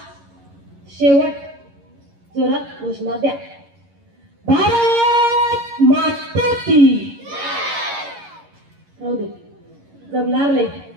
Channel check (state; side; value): late; left; 11 ms